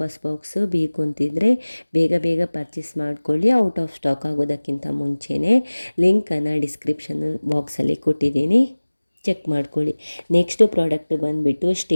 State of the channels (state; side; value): inverted; both; correlation -1.00